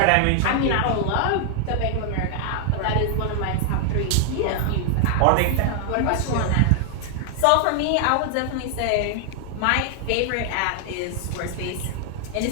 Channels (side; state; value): both; different; correlation 0.00